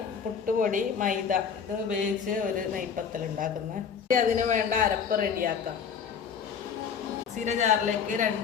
പുട്ടുപൊടി, മൈദ ഇത് ഉപയോഗിച്ച് ഒരു നെയ്പത്തൽ ഉണ്ടാക്കുന്നത്. അതിന് വേണ്ട അരപ്പ് റെഡിയാക്കാം. മിക്സിയുടെ ജാറിലേക്ക്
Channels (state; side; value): quieter; right; 6.8 dB